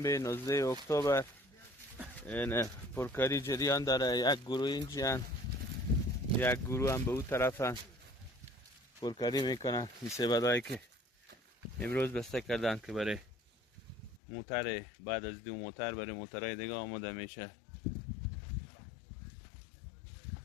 19 اکتبر این پرکاری جریان داره. یک گروه اینجان، یک گروه هم به اون طرفن پرکاری میکنن. این سبدایی که امروز بسته کردن که برای موتر، بعد از 2 موتر برای موترهای دیگه آماده میشه.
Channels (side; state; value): right; drops out; at 14.2 s